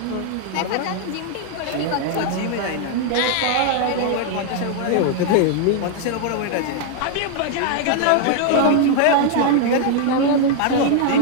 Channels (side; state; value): both; different; correlation 0.00